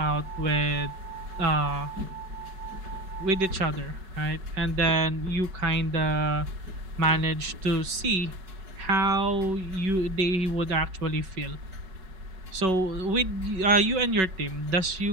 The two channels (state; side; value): late; left; 5.3 ms